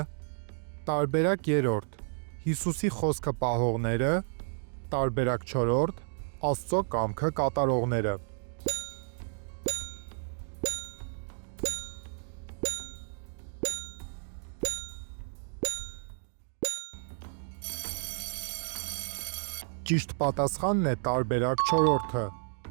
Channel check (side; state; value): left; silent; digital silence